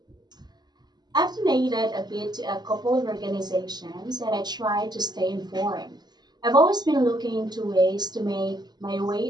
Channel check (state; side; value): late; left; 0.20 ms